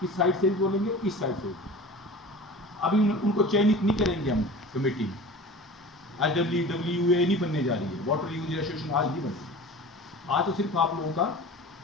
इस साइड से भी बोलेंगे, इस साइड से भी। अभी उनको चयनित नहीं करेंगे हम कमेटी में। आज WWA नहीं बनने जा रही है, वाटर यूजर एसोसिएशन आज नहीं बनी। आज तो सिर्फ आप लोगों का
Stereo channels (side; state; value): both; normal; correlation 0.37